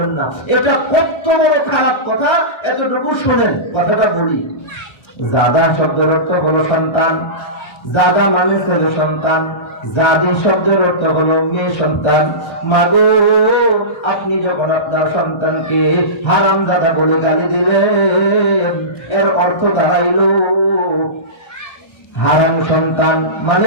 না। এটা কত বড় খারাপ কথা, এতটুকু শোনেন, কথাটা বলি। জাদা শব্দের অর্থ হলো সন্তান, জাদা মানে ছেলে সন্তান, জাদি শব্দের অর্থ হলো মেয়ে সন্তান। মাগো, আপনি যখন আপনার সন্তানকে হারামজাদা বলে গালি দিলেন, এর অর্থ দাঁড়াইলো হারাম সন্তান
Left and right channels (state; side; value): late; right; 1.3 ms